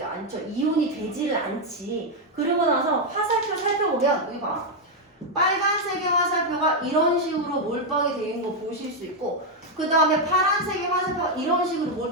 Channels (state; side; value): normal; both; correlation 0.01